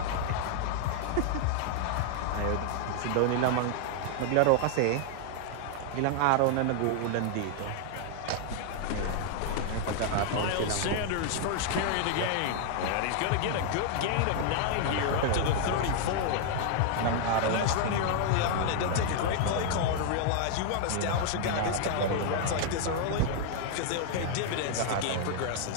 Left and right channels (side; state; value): both; different; correlation 0.00